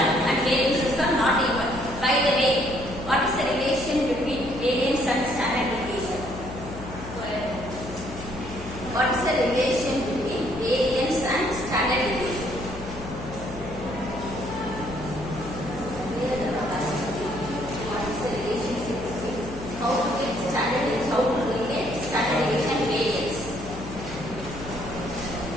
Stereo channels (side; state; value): left; noise; hum, 12 dB below the sound